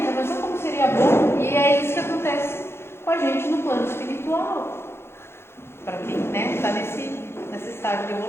a pessoa como seria bom, e é isso que acontece com a gente no plano espiritual. Para quem está nesse estágio de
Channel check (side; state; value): right; late; 0.12 ms